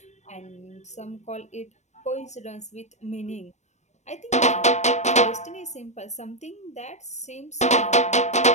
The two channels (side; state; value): right; late; 0.34 ms